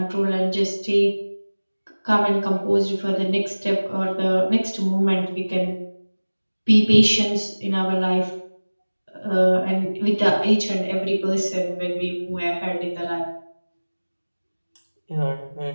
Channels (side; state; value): both; inverted; correlation -1.00